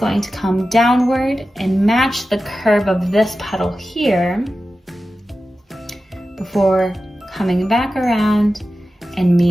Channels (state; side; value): normal; both; correlation 0.93